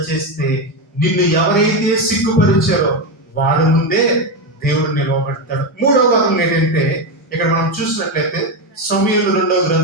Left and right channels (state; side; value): normal; both; correlation 0.11